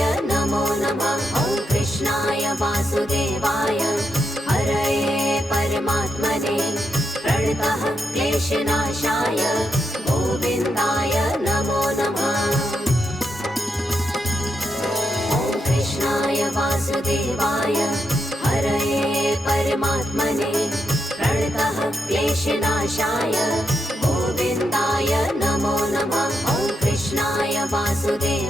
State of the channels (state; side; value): normal; both; correlation 0.83